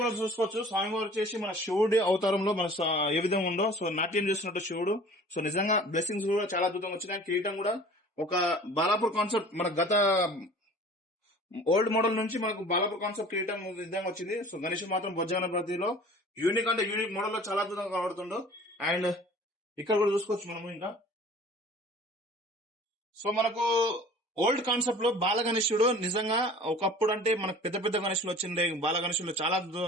చూసుకోవచ్చు స్వామివారు వచ్చేసి మన శివుడి అవతారంలో మన ఏ విధంగా ఉందో. సో నాట్యం చేస్తున్నట్టు శివుడు. సో నిజంగా బ్లెస్సింగ్స్ కూడా చాలా అద్భుతంగా వచ్చినాయి. కిరీటం కూడా ఒక బాలాపూర్ కాన్సెప్ట్ మన గత ఓల్డ్ మోడల్ నుంచి మనకు బాలాపూర్ కాన్సెప్ట్ కిరీటం విధంగా వచ్చింది. సో గణేశుడు మాత్రం బొజ్జ గణపతిలో యూనిక్ అంటే యూనిక్ మోడల్ లో చాలా అద్భుతంగా కనబడుతుండో. అండ్ ఇక్కడ కూడా చూసుకోవచ్చు మనము ఇంకా. సో మనకు ఓల్డ్ కాన్సెప్ట్ లో బాల గణేశుడు నిజంగా ఒకప్పుడు అంటే మనకు పెద్ద గణేశులు వచ్చిండే. బాల గణేశుడు చాలా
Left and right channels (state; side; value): normal; both; correlation 0.46